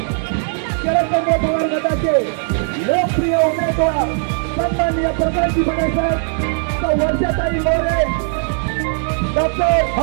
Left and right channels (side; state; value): left; silent; 67 dB below the other